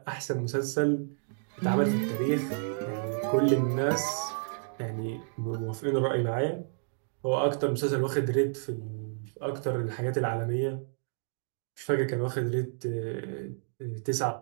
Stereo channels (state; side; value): silent; left; digital silence